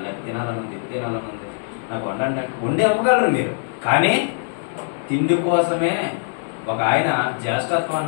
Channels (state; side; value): silent; right; digital silence